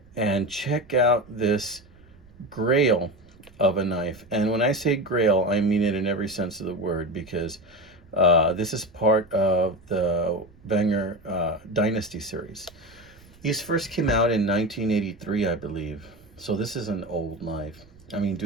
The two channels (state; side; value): noise; right; rumble, 26 dB below the sound